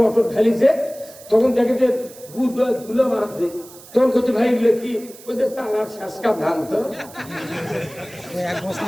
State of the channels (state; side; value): noise; right; hiss, 20 dB below the sound